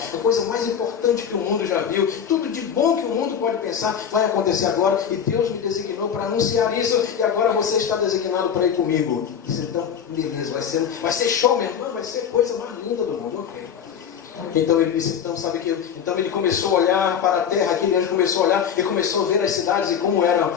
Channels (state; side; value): quieter; right; 8.0 dB